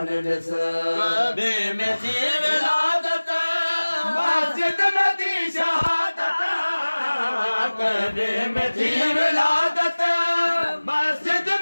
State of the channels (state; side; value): inverted; both; correlation -1.00